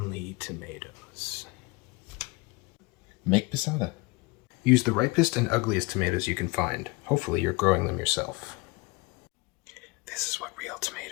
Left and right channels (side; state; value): right; quieter; 25.0 dB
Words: tomatoes? Make passata. Use the ripest and ugliest tomatoes you can find. Hopefully you're growing them yourself. This is what real